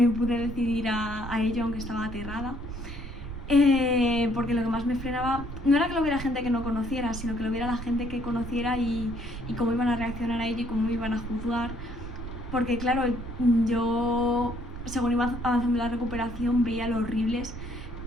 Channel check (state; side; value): noise; right; rumble, 9 dB below the sound